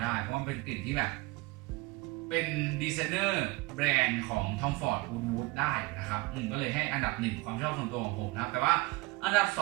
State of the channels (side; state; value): left; quieter; 22.6 dB